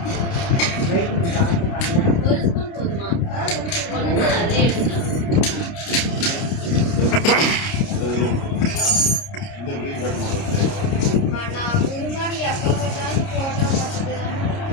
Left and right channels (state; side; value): late; right; 29 ms